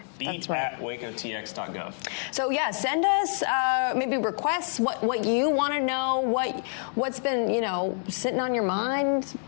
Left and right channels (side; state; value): right; silent; 60 dB below the other